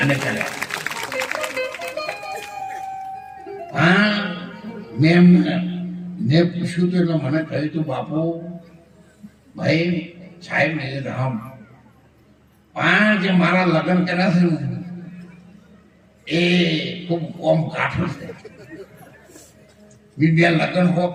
અને કર્યા. હા, મેં પૂછ્યું તો એટલે મને કહ્યું તું, બાપુ ભાઈ સાહેબ ને રામ, જે મારા લગ્ન કર્યા છે ને એ ખૂબ કોમ કાઠું છે. બીજા લગ્ન હો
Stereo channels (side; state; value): both; identical; correlation 1.00